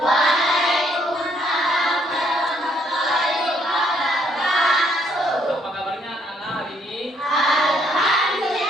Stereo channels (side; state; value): both; normal; correlation 0.69